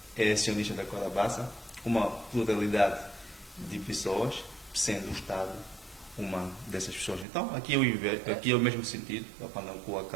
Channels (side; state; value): left; drops out; at 7.2 s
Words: é acionista da Câmara Bassa, uma pluralidade de pessoas, sendo o Estado uma dessas pessoas. Então, aqui é o mesmo sentido, a Pandacua